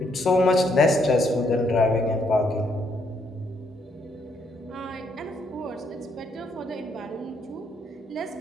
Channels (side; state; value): both; normal; correlation 0.73